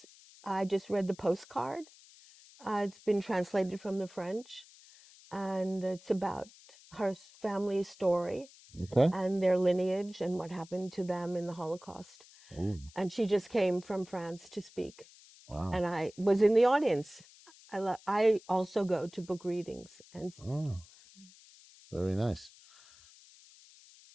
I just read the postcard. It's been translated from the French. and it's about her family's story Okay. and their lineage and what happened to them in the Holocaust. Ooh, And she just came from France to speak, wow. and I was in the audience. I also go to book readings, and Oh, very nice.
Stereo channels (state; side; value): noise; left; hiss, 23 dB below the sound